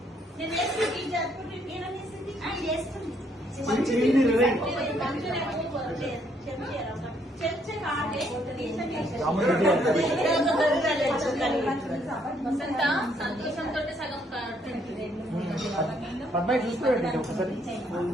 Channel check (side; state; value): both; normal; correlation 0.69